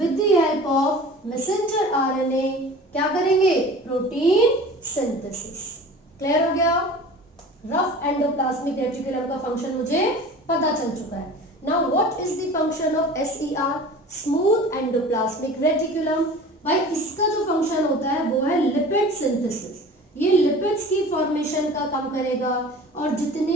the help of messenger RNA क्या करेंगे? Protein synthesis. क्लियर हो गया? रफ एंडोप्लाज्मिक रेटिकुलम का फंक्शन मुझे पता चल चुका है. Now what is the function of SER, smooth endoplasmic reticulum? भाई इसका जो फंक्शन होता है वो है लिपिड सिंथेसिस. ये लिपिड्स की फॉर्मेशन का काम करेगा और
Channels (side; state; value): both; normal; correlation 0.40